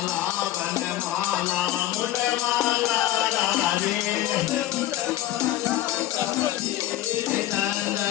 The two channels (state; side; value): quieter; right; 13.9 dB